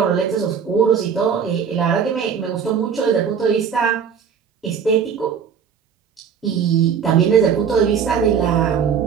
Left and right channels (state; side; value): quieter; left; 7.0 dB